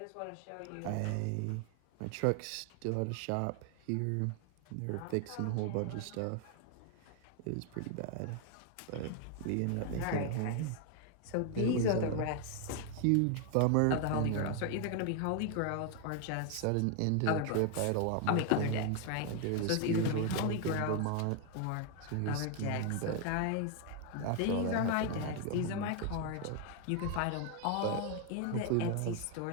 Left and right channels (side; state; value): both; different; correlation 0.01